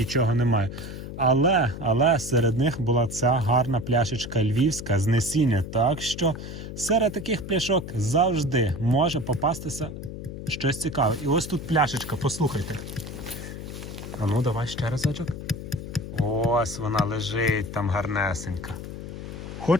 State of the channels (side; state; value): left; noise; hum, 9 dB below the sound